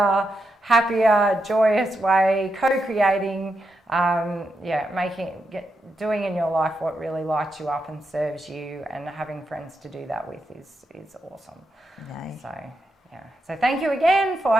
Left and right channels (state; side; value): normal; both; correlation 0.84